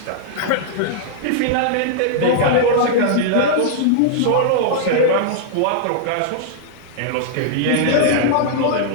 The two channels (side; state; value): both; different; correlation -0.01